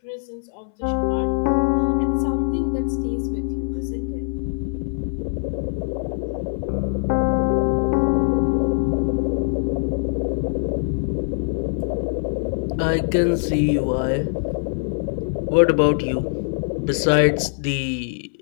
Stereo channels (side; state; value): right; silent; 64 dB below the other